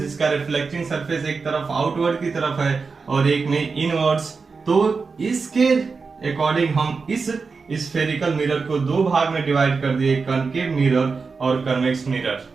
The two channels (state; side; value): quieter; left; 4.7 dB